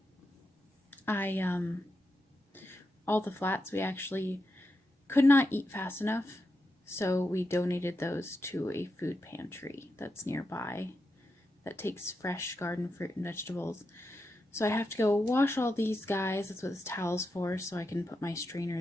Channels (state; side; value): normal; both; correlation 0.87